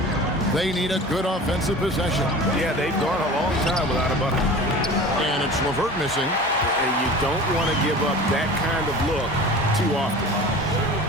They need a good offensive possession. Yeah, they've gone a long time without a bucket. And it's LeVert missing. And you don't want to give up that kind of look too often.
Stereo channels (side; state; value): both; normal; correlation 0.38